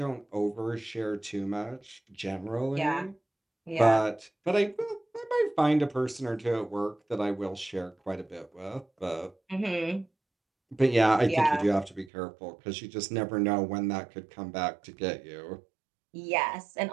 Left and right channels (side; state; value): left; drops out; at 12.1 s